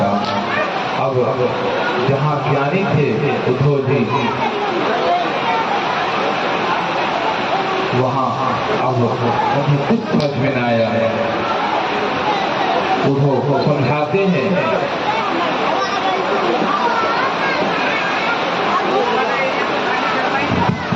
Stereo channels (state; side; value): identical; both; correlation 1.00